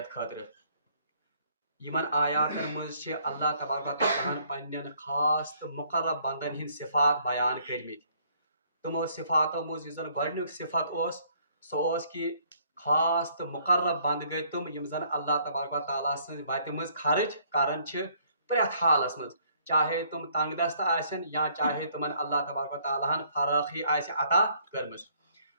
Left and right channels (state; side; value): inverted; both; correlation -0.64